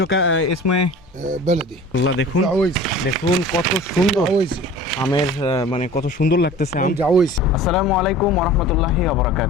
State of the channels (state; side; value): normal; both; correlation 0.42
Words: ইসমে بلدي আল্লাহ, দেখুন جعويسي দেখুন কত সুন্দর جعويسي আমের মানে কত সুন্দর লাগতেছে আম। جعويسي আসসালামু আলাইকুম ওয়া রাহমাতুল্লাহি ওয়া